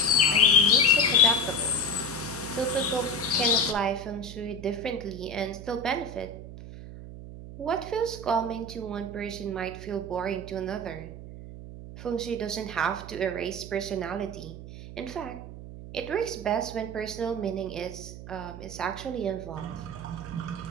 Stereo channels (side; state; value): right; noise; hum, 12 dB below the sound